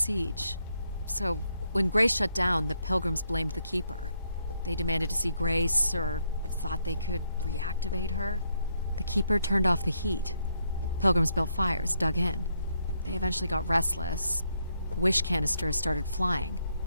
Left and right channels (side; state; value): both; inverted; correlation -0.76